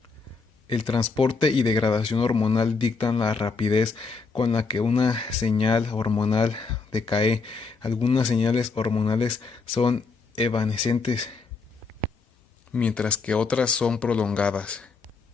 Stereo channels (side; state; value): right; quieter; 4.6 dB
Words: El transporte y degradación hormonal dictan la rapidez con la que una señal hormonal decae. Algunas señales hormonales son evanescentes, mientras que otras son prolongadas.